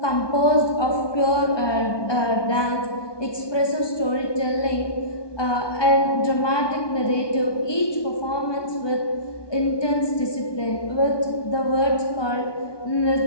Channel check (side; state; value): right; late; 1.2 ms